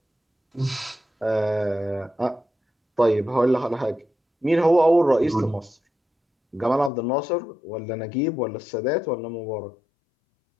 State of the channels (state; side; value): drops out; right; at 6.9 s